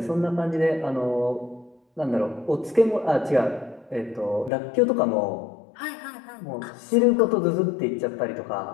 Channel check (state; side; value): drops out; right; at 4.5 s